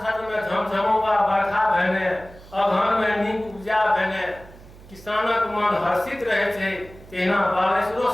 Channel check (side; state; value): right; noise; hum, 20 dB below the sound